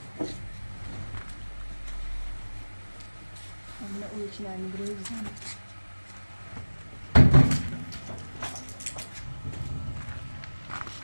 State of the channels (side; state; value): both; inverted; correlation -1.00